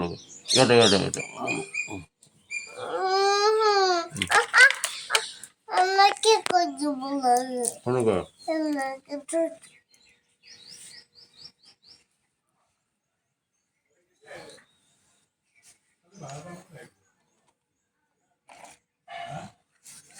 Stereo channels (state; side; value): identical; both; correlation 1.00